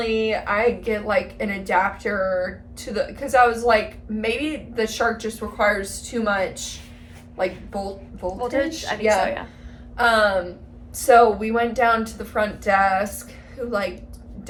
I get like an adapter to because I was like, maybe the Shark just requires too much like voltage. I think so, yeah. So we went down to the front desk, who like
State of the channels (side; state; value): both; identical; correlation 1.00